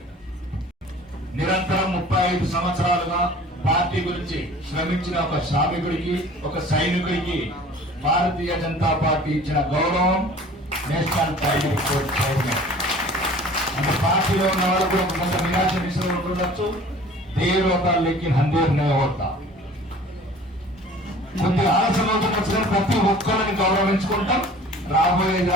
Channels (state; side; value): normal; both; correlation 0.47